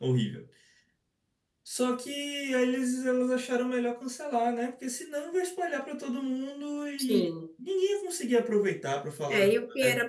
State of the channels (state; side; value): identical; both; correlation 1.00